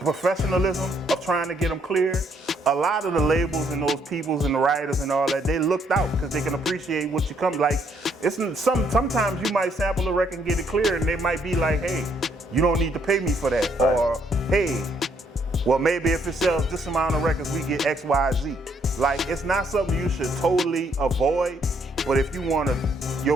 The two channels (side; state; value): both; normal; correlation 0.70